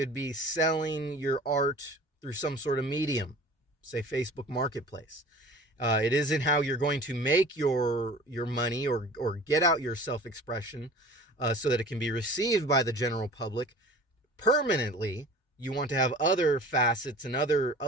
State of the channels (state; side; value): normal; both; correlation 0.42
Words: be selling your art through some sort of medium, say Facebook Marketplace. It isn't how you're going to make your money or get out your self-expression so that it can be received by the general public permanently. You want to have other facets and